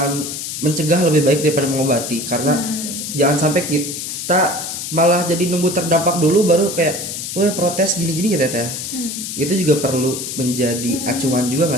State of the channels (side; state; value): left; noise; hiss, 6 dB below the sound